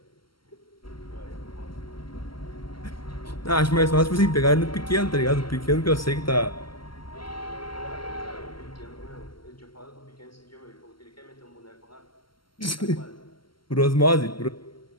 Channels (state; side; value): late; right; 0.74 ms